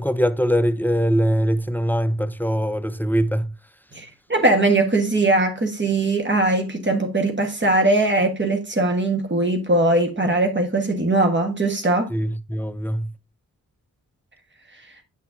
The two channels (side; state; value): both; normal; correlation 0.42